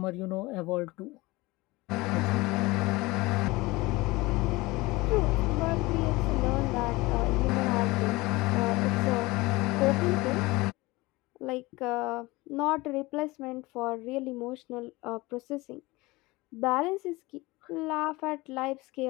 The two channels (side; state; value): right; quieter; 21.7 dB